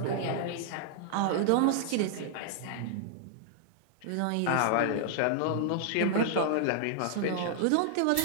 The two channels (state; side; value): different; both; correlation -0.01